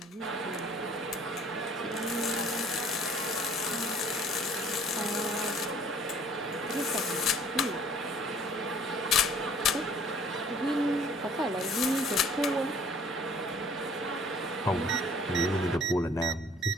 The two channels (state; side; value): normal; both; correlation 0.55